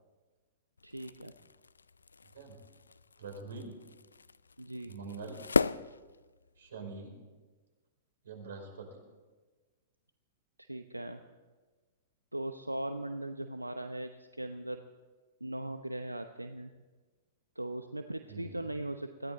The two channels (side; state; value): both; inverted; correlation -0.87